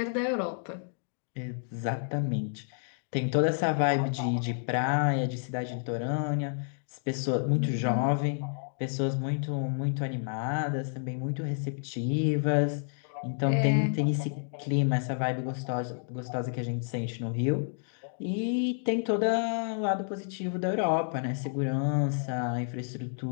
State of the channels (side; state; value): right; silent; digital silence